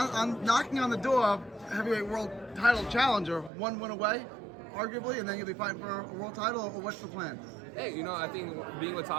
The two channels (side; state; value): left; drops out; at 3.5 s